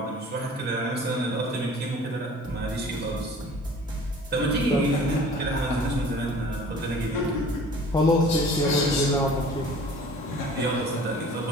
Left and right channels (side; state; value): both; normal; correlation 0.47